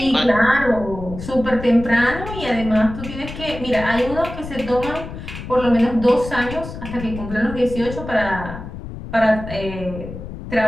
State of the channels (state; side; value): noise; left; rumble, 10 dB below the sound